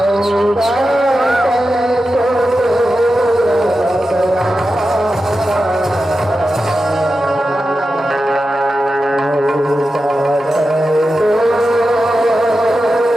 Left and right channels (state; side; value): normal; both; correlation 0.91